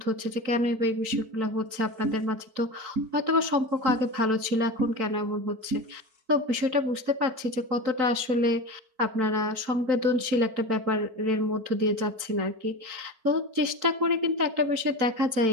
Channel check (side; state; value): left; late; 4.5 ms